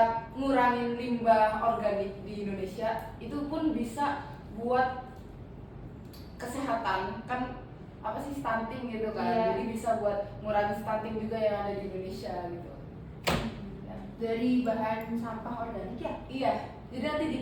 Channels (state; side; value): identical; both; correlation 1.00